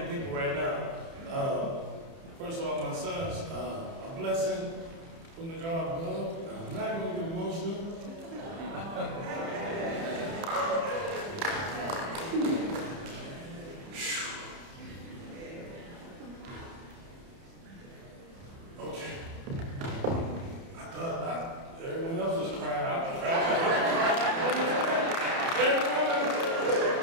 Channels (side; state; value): left; late; 30 ms